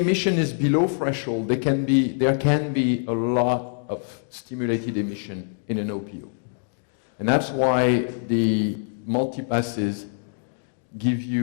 is below threshold, there can be a lot of stimulated emission in an OPO. And that's why the multipasses give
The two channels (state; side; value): silent; right; 62 dB below the other